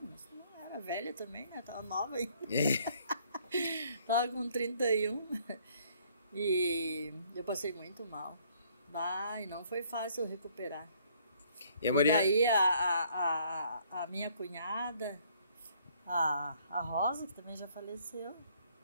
mas não era velha também, né? Tava nova ainda. Tava com 31. E eu passei muito mal. E não foi fácil recuperar. E a Mariana... daí a minha cunhada, a Rosa, que também já faleceu,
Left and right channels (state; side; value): inverted; both; correlation -0.63